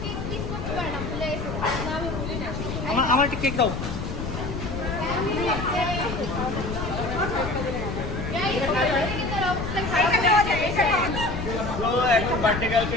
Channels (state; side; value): noise; left; rumble, 5 dB below the sound